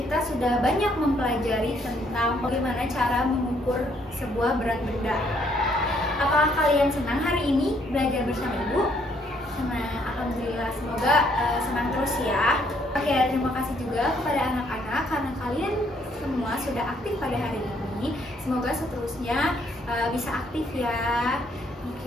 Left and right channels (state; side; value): normal; both; correlation 0.68